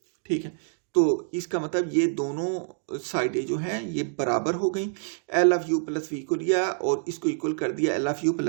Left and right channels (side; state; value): left; silent; digital silence